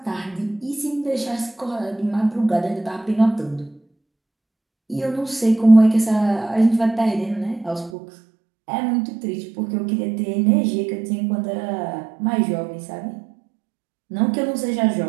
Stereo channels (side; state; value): left; drops out; at 7.9 s